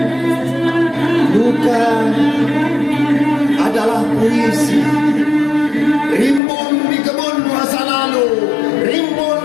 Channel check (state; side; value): drops out; right; at 6.4 s